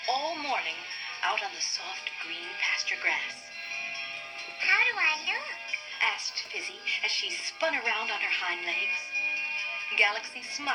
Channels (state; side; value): identical; both; correlation 1.00